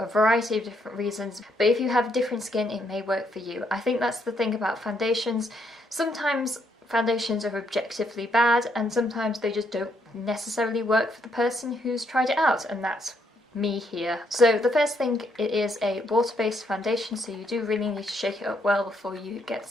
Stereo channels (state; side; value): normal; both; correlation 0.74